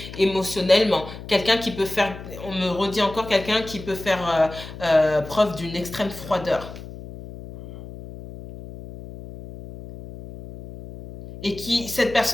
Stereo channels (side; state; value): left; noise; hum, 13 dB below the sound